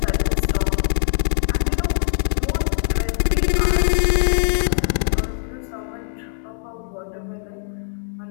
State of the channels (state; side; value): silent; right; digital silence